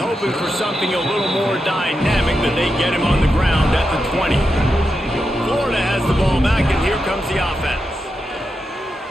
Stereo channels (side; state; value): both; normal; correlation 0.87